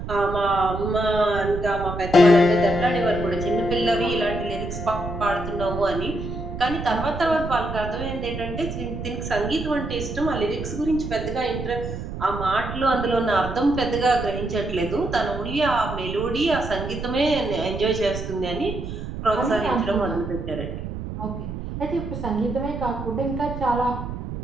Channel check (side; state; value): right; noise; rumble, 7 dB below the sound